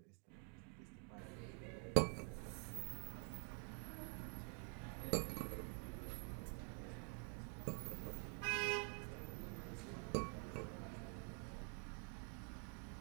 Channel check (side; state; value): left; quieter; 37.7 dB